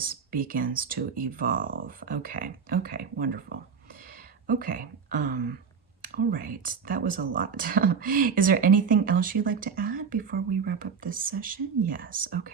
begins to evolve. Okay, wonderful. Okay, all right, that was a lot. Is there anything else you'd like to add before we wrap up this session? Yes,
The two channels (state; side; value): quieter; left; 6.1 dB